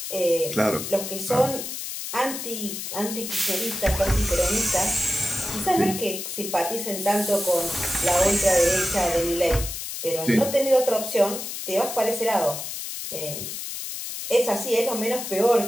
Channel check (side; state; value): left; noise; hiss, 6 dB below the sound